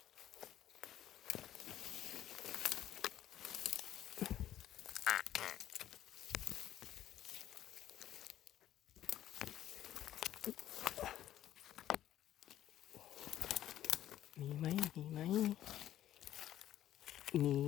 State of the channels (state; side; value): quieter; right; 12.3 dB